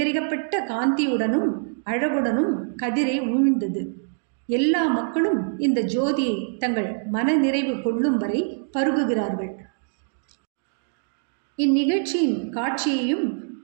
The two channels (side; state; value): left; silent; digital silence